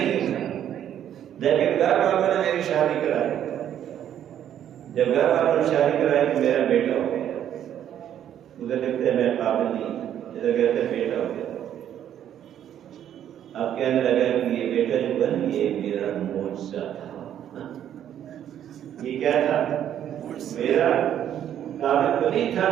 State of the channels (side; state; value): left; quieter; 10.3 dB